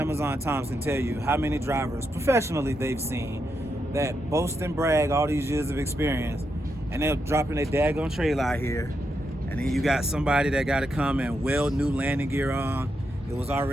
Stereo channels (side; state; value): both; normal; correlation 0.83